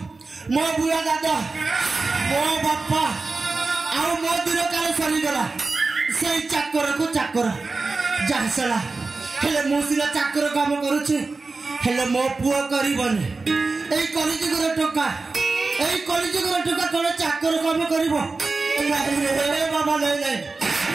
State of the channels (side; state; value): left; quieter; 3.8 dB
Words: मो बुआ दादा मो बापा आउ मो दिन काल सरीगला से चाकर को चाकर जासला हेले मो सिला चाकर काम करूछि हेले मो पुओ करिबनी एई कलिजुगर टोका एई कलिजुगर टोका कोन चाकर काम करिवो रे बाबा ले